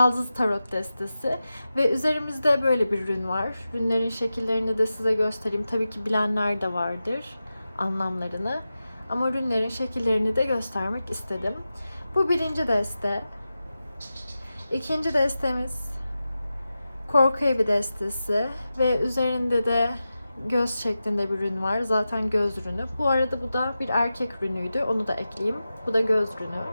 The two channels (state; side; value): inverted; both; correlation -0.93